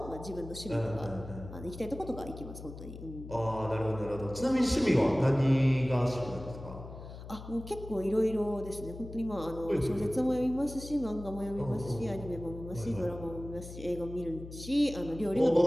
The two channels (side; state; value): left; noise; hum, 12 dB below the sound